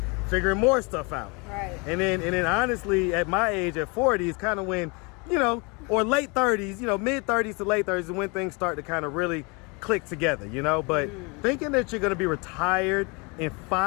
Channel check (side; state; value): right; quieter; 29.9 dB